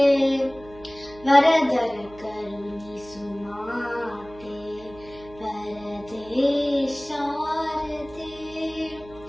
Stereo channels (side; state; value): right; noise; hum, 20 dB below the sound